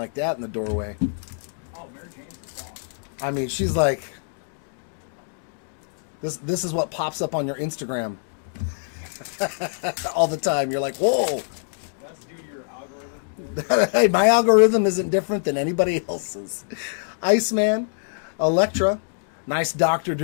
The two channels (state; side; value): silent; right; digital silence